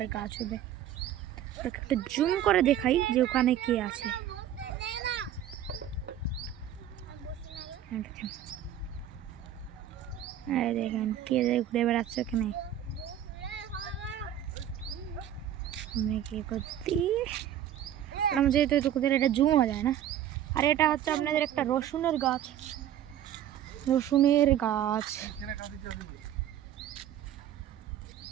গাছ হবে। একটা জুম করে দেখাই যে ওখানে কে আছে। দেখেন কে ঘুরে বেড়াচ্ছে ওখানে। যেহেতু এটা জুম হয়ে যায় না। আর এটা হচ্ছে আপনাদের একটা রসুনের গাছ।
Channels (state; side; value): quieter; left; 10.7 dB